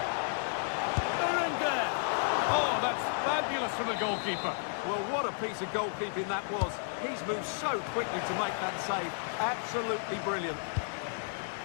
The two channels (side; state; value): right; silent; 56 dB below the other